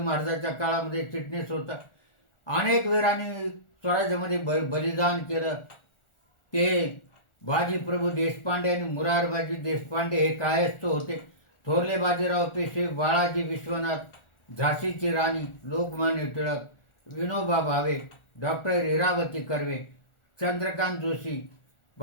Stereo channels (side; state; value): right; late; 1.4 ms